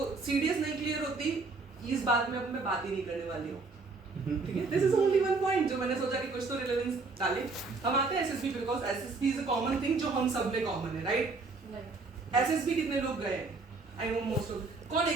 CDS नहीं clear होती, इस बात में अब मैं बात ही नहीं करने वाली हूँ, ठीक है। This is only one point जो मैंने सोचा कि कुछ तो रिलेवेंस डाले। हम आते हैं SSB because SSB is a common thing जो हम सब में कॉमन है, राइट। एसएसबी कितने लोग गए हैं? आई नो मोस्ट ऑफ, कौन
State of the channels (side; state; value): left; quieter; 4.0 dB